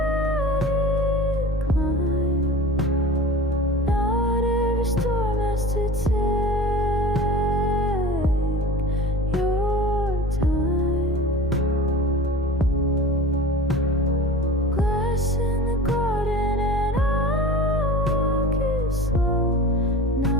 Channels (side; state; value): both; normal; correlation 0.37